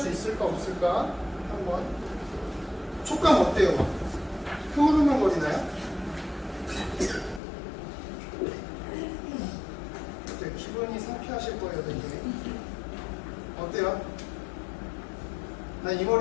있을까 없을까 한번. 촉감 어때요? 흐물흐물거리나요? 네, 기분이 상쾌하실 거예요, 되게. 어때요? 나 이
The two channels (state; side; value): drops out; right; at 7.4 s